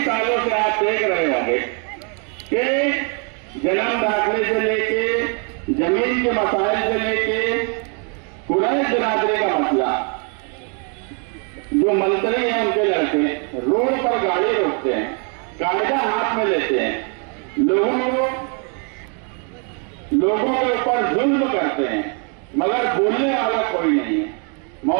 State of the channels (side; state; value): left; quieter; 37.5 dB